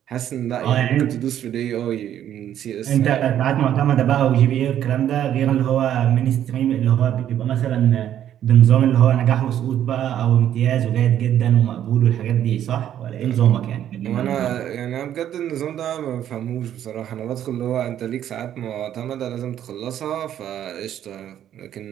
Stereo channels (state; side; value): quieter; left; 10.7 dB